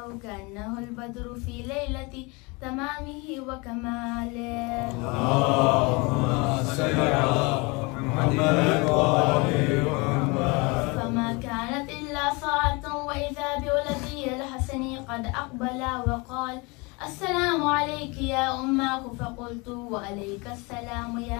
कअन्नहु अल-बद्रु फ़ी लैलति तमामिहि व कमालिहि। फमा कानत इल्ला साअतुन वइज़ा बिवलदी अल-हसन क़द अक़बल वक़ाल अस्सलामु अलैकी या उम्मह फ़क़ुल्तु व अलैका अस्सलाम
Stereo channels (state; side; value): quieter; right; 27.4 dB